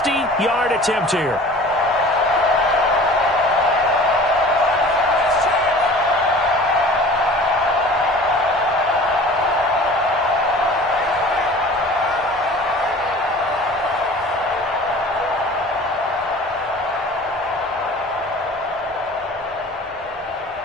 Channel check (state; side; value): normal; both; correlation 0.43